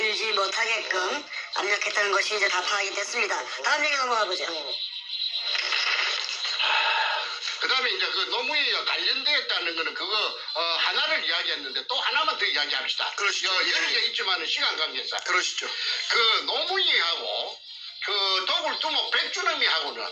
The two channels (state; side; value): identical; both; correlation 1.00